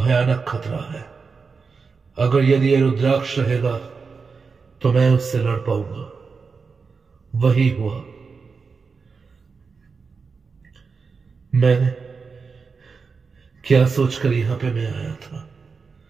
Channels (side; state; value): left; quieter; 5.0 dB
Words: खतरा है। अगर यदि ये रुद्राक्ष रहेगा तो मैं उससे लड़ पाऊंगा। वही हुआ। मैंने क्या सोचकर यहां पे मैं आया था,